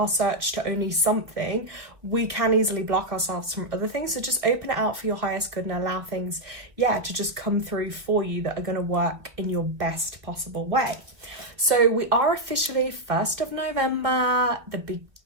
search to only something, we can easily block ourselves from other things. So just open it out for your highest good and allow things, yeah, to just come through for you that are going to work in your best possible way. So we are officially 1st of November, the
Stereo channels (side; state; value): left; late; 1.5 ms